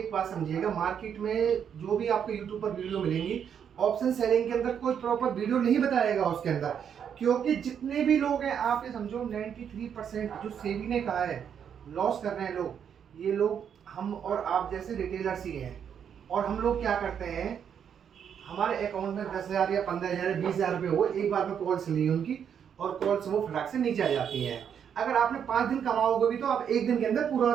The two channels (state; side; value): quieter; left; 8.1 dB